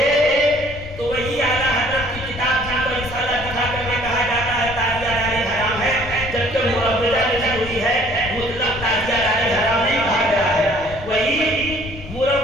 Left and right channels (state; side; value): noise; left; rumble, 14 dB below the sound